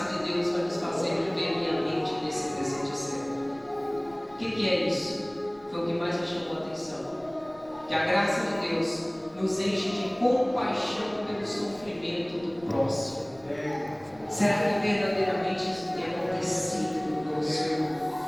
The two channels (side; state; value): left; noise; rumble, 26 dB below the sound